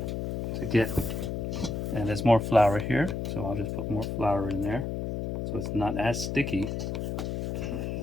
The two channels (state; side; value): noise; left; hum, 3 dB below the sound